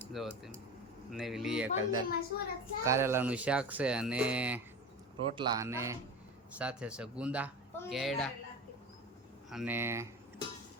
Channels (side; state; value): both; normal; correlation 0.30